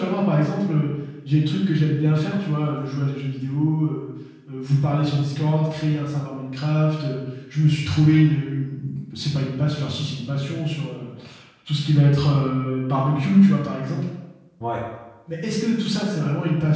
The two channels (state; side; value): identical; both; correlation 1.00